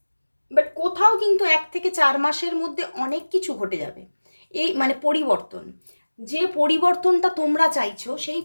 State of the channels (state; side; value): inverted; both; correlation -1.00